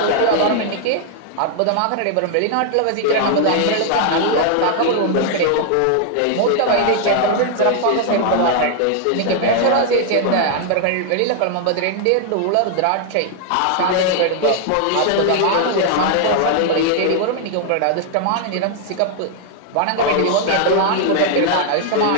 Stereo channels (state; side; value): different; both; correlation 0.00